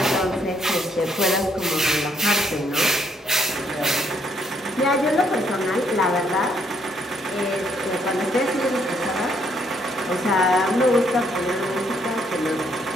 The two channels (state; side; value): normal; both; correlation 0.71